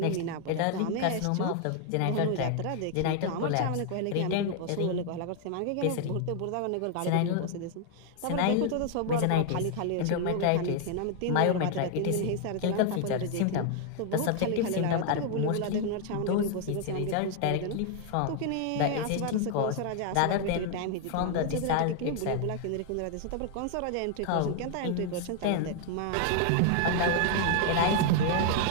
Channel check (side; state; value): both; different; correlation 0.00